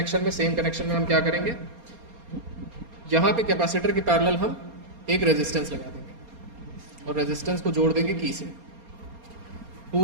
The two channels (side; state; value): left; late; 4.3 ms